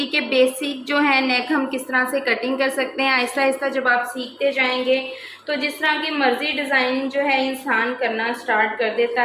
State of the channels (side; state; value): both; identical; correlation 1.00